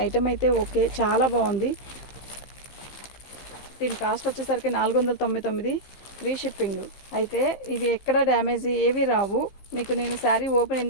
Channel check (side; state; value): right; late; 15 ms